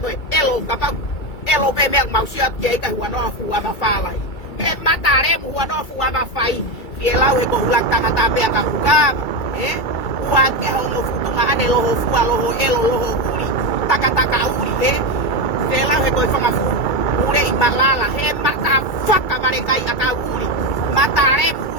we elo kapau elo pe me mau sia ke ka huano fu ama falai e matare mu huano fu ama fai fiela we ko hulang tangata pe ka huga ua ke hono fu tuma ane loho fu loho elo loho uri taka uri fiela we ko fanga fu ure i malala he mata faka mare kai aka uri matare mu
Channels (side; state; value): right; late; 2.3 ms